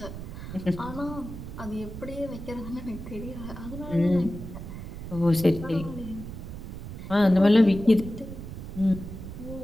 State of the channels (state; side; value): noise; right; rumble, 10 dB below the sound